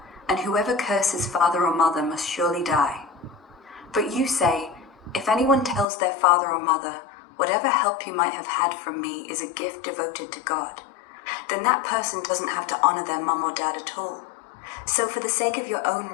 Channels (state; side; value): drops out; right; at 5.9 s